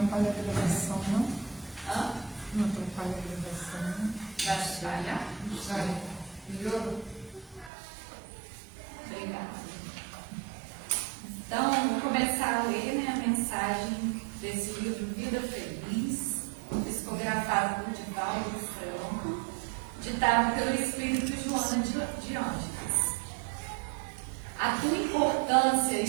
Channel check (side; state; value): left; drops out; at 7.7 s